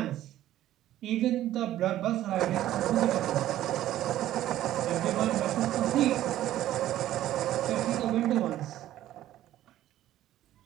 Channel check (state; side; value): quieter; left; 13.4 dB